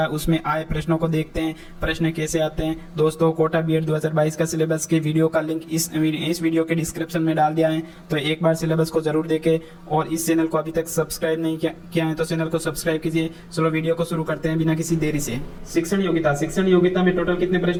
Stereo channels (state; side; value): identical; both; correlation 1.00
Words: उसमें आए प्रश्नों को देखते हैं, प्रश्न कैसे आते हैं। दोस्तों, कोटा बीएड 2022 का सिलेबस के वीडियो का लिंक इस वीडियो के डिस्क्रिप्शन में डाल दिया है, तो एक बार सिलेबस को जरूर देखें। और इस चैनल को अभी तक सब्सक्राइब नहीं किया है तो चैनल को सब्सक्राइब कीजिए। चलो वीडियो को शुरू करते हैं बिना किसी देरी से। शिक्षण योग्यता में टोटल कितने